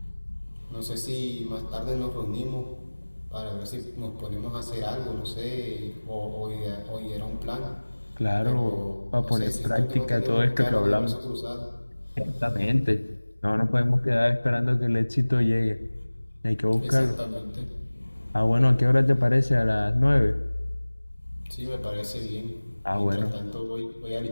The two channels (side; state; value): both; inverted; correlation -1.00